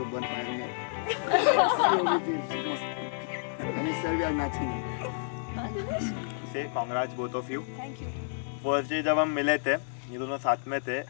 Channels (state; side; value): silent; right; digital silence